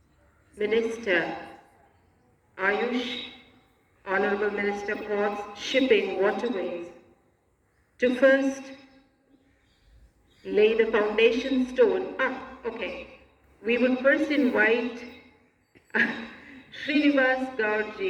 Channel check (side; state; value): both; identical; correlation 1.00